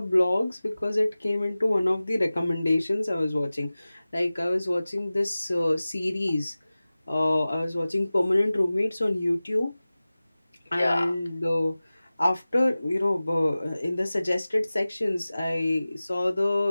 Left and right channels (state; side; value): inverted; both; correlation -0.97